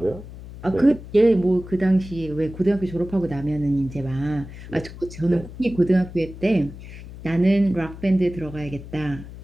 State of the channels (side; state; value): left; noise; hum, 14 dB below the sound